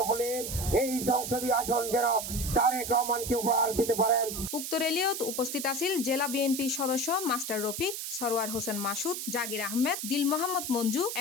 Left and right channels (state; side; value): noise; right; hiss, 5 dB below the sound